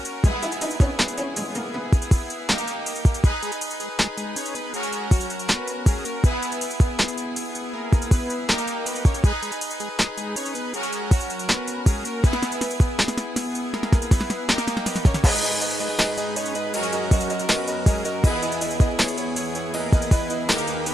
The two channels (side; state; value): both; normal; correlation 0.86